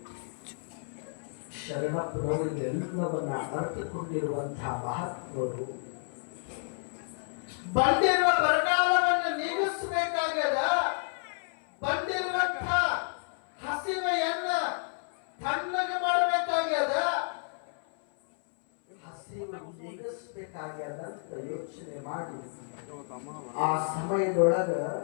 ಶರಣಪ್ಪನವರು ಎಲ್ಲವನ್ನ ಅರ್ಥಕೊಂಡಿರುವಂತಹ ಮಹಾತ್ಮರು ಬಂದಿರುವ ಬರಗಾಲವನ್ನು ನೀಗಿಸಬೇಕಾಗದ. ಬಂದಿರುವಂತಹ ಹಸಿವೆಯನ್ನ ತಣ್ಣಗೆ ಮಾಡಬೇಕಾಗ್ಯದ. ಹಸಿವು ನೀಗಿಸಬೇಕಾಗ್ಯದ ಅಂತ ಯೋಚನೆ ಮಾಡಿ ಆ ಸಮಯದೊಳಗ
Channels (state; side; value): silent; right; 57 dB below the other